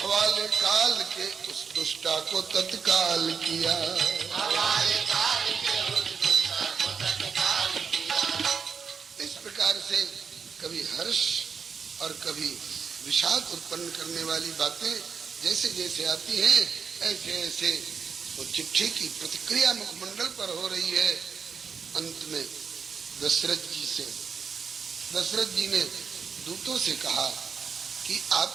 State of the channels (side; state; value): left; quieter; 6.1 dB